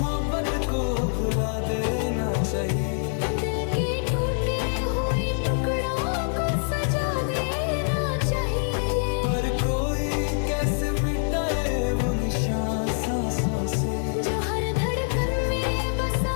को भुला देना चाहिए, दिल के टूटे हुए टुकड़ों को सजा देना चाहिए। पर कोई कैसे मिटाए वो निशान सांसों से, जो हर धड़कन में बसा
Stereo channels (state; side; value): silent; right; 62 dB below the other